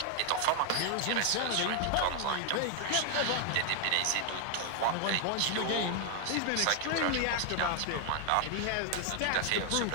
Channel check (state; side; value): different; both; correlation 0.00